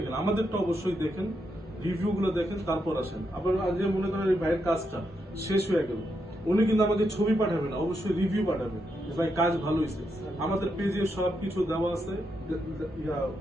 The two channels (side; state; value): both; normal; correlation 0.82